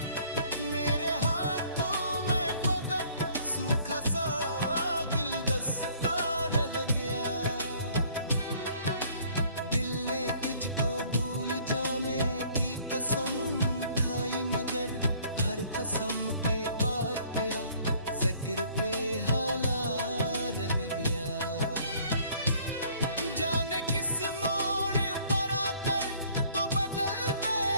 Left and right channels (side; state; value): both; inverted; correlation -0.58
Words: मेरे हाथों में फकत सूखा सा गुलदस्ता रह गया। दिल ने तुझको भूल जाने की कसम खाई, मगर हर कसम के बाद तेरा जिक्र पे हाला रह गया। जाने किस मोड़ पर आकर तो बदल